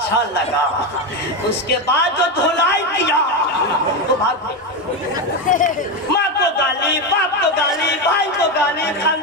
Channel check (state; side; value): normal; both; correlation 0.13